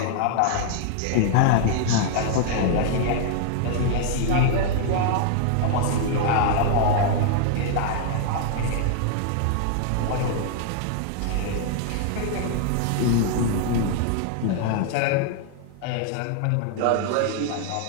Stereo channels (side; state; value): both; different; correlation 0.00